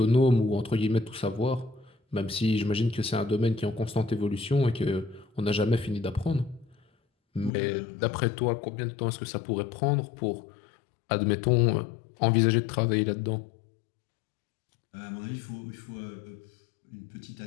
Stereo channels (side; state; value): right; drops out; at 7.5 s